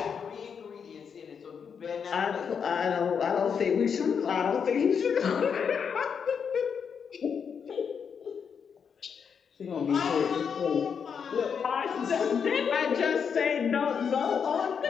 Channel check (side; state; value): right; quieter; 6.7 dB